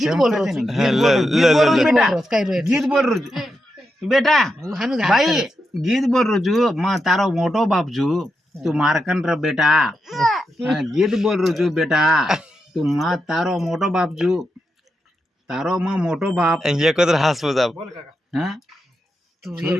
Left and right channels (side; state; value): both; normal; correlation 0.86